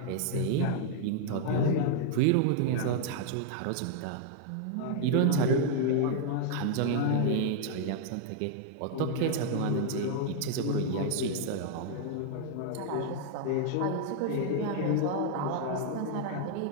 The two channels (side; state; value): both; different; correlation 0.00